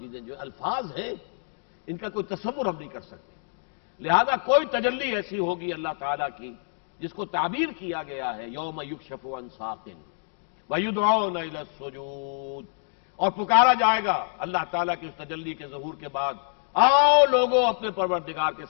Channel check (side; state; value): right; silent; digital silence